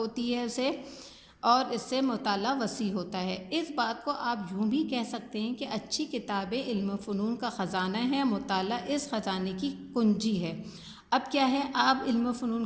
ہے اسے، اور اس سے مطالعہ وسیع ہوتا ہے۔ اس بات کو آپ یوں بھی کہہ سکتے ہیں کہ اچھی کتابیں علم و فنون کا خزانہ ہے، مطالعہ اس خزانے کی کنجی ہے۔ اب کیا ہے، آپ علم و فنون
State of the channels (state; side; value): identical; both; correlation 1.00